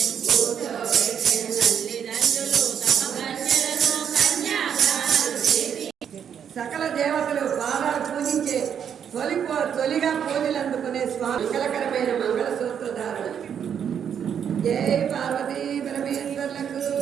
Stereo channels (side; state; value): left; quieter; 8.2 dB